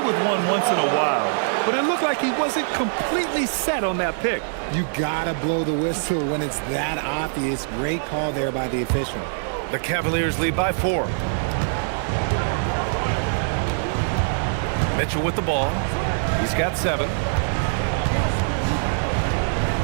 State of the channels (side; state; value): left; silent; 60 dB below the other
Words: one once in a while, but it looked like he wasn't completely set on that pick. You gotta blow the whistle when it's that obvious. Great call there by the official. The Cavaliers lead by 4. Mitchell with the ball. He's got 7.